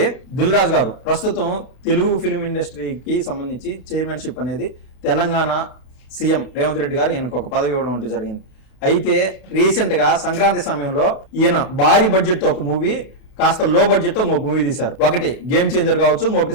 దిల్ రాజు గారు ప్రస్తుతం తెలుగు ఫిల్మ్ ఇండస్ట్రీకి సంబంధించి చైర్మన్షిప్ అనేది తెలంగాణ సీఎం రేవంత్ రెడ్డి గారు ఈయనకు ఒక పదవి ఇవ్వడం అంటూ జరిగింది. అయితే రీసెంట్గా సంక్రాంతి సమయంలో ఈయన భారీ బడ్జెట్తో ఒక మూవీ, కాస్త లో బడ్జెట్తో ఇంకొక మూవీ తీశారు. ఒకటి గేమ్ చేంజర్ కావచ్చు,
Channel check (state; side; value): late; right; 32 ms